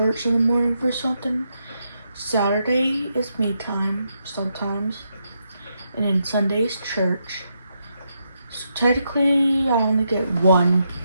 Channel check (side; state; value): both; inverted; correlation -0.81